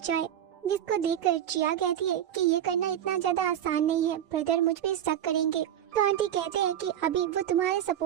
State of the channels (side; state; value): left; quieter; 10.5 dB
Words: जिसको देखकर जिया कहती है कि ये करना इतना ज्यादा आसान नहीं है, ब्रदर मुझ पे शक करेंगे। तो आंटी कहते हैं कि अभी वो तुम्हारे